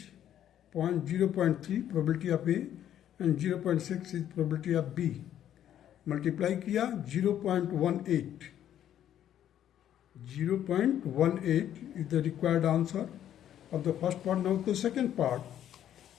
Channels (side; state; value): right; quieter; 10.8 dB